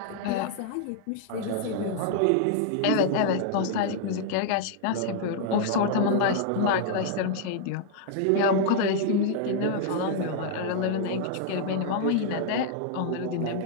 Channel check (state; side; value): different; both; correlation -0.01